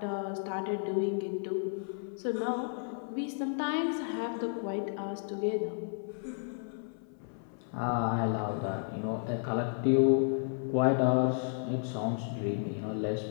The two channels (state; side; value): silent; right; 56 dB below the other